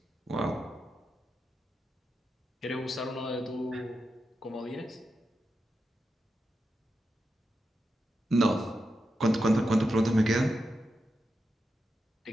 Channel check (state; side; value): normal; both; correlation 0.88